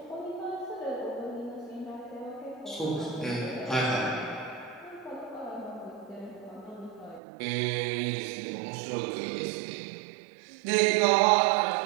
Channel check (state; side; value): drops out; left; at 7.2 s